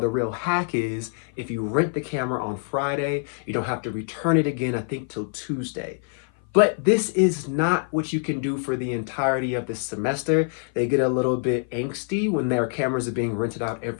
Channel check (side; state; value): right; silent; 56 dB below the other